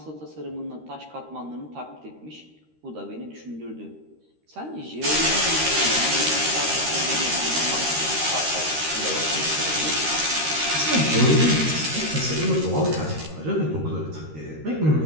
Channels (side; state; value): left; late; 13 ms